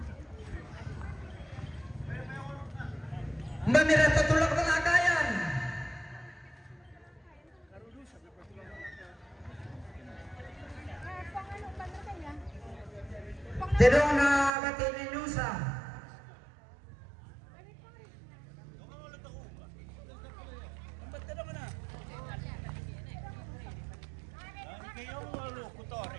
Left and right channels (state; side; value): drops out; left; at 14.5 s